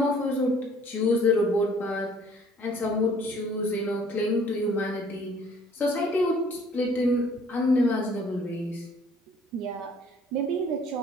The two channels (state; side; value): normal; both; correlation 0.56